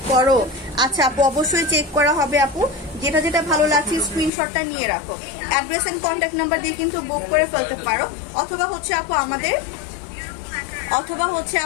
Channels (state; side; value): drops out; right; at 4.3 s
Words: করো। আচ্ছা আপু, অবশ্যই চেক করা হবে আপু, যেটা যেটা ভালো লাগছে স্ক্রিনশটটা নিয়ে রাখো। অ্যাড্রেস এন্ড কন্ট্যাক্ট নাম্বার দিয়ে কিন্তু বুক করে ফেলতে পারো, অথবা হচ্ছে আপু